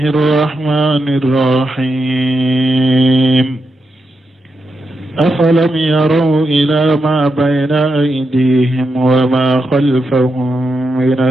الرحمن الرحيم أفلم يروا إلى ما بين أيديهم وما خلفهم من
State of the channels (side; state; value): both; normal; correlation 0.85